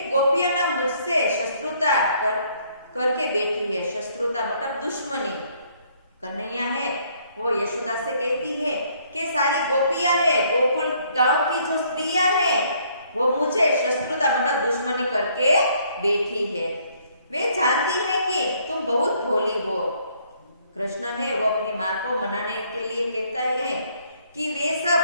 गोपिया ना मुझसे शत्रुता करके बैठी है। शत्रुता मतलब दुश्मनी। कन्हैया है वो यशोदा से कहती है कि सारी गोपियां है, गोकुल गांव की जो स्त्रियां है वो मुझे शत्रुता मतलब दुश्मनी करके बैठी है। वे जानती है कि तुम बहुत भोली हो। कृष्ण है वो अपनी माँ को मनाने के लिए कहता है कि वे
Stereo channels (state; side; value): inverted; both; correlation -0.65